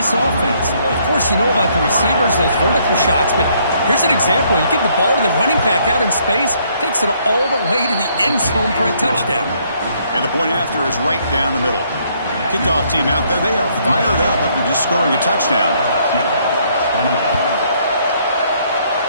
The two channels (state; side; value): inverted; both; correlation -0.68